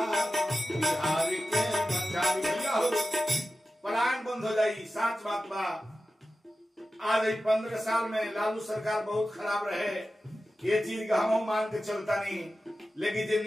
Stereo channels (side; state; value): both; normal; correlation 0.94